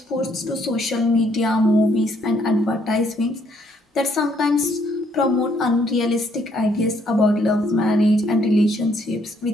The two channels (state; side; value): normal; both; correlation 0.69